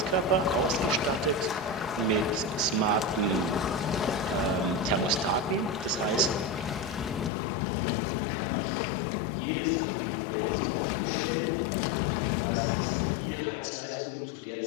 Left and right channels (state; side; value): drops out; right; at 7.3 s